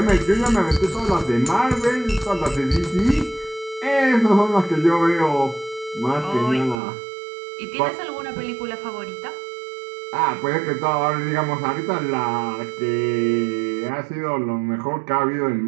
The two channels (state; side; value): drops out; left; at 6.8 s